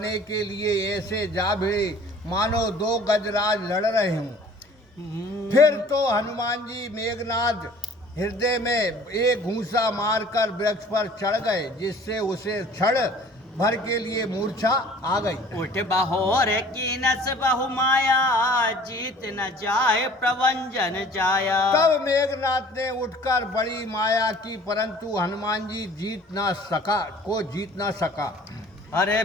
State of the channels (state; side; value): normal; both; correlation 0.50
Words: के लिए ऐसे जा भिड़े मानो दो गजराज लड़ रहे हों। फिर तो हनुमान जी मेघनाथ हृदय में एक घूंसा मारकर वृक्ष पर चढ़ गए, जिससे उसे क्षण भर के लिए मूर्छा आ गई। उठ बहोर की नस बहु माया, जीत न जाए प्रवंजन जाया। तब मेघनाथ ने उठकर बड़ी माया की, परंतु हनुमान जी जीत ना सका। अरे